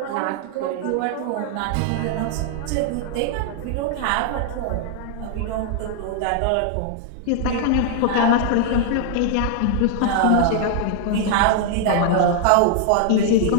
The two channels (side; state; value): both; different; correlation 0.00